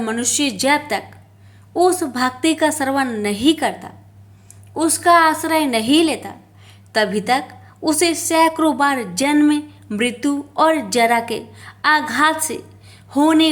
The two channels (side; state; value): both; identical; correlation 1.00